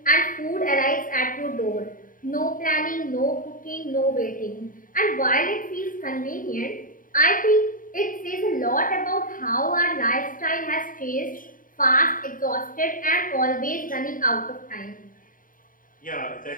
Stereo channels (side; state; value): right; late; 0.40 ms